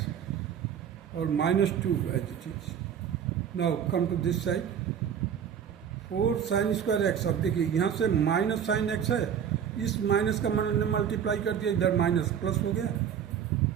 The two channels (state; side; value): quieter; left; 8.4 dB